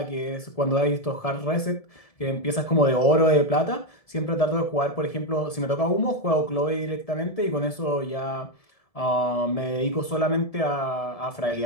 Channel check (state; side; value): late; right; 1.7 ms